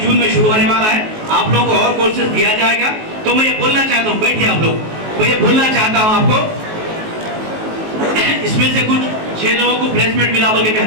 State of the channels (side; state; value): left; late; 19 ms